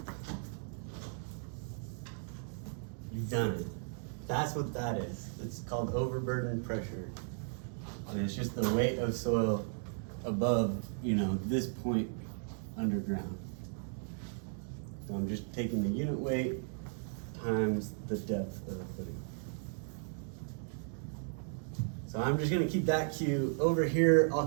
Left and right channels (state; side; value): silent; left; 54 dB below the other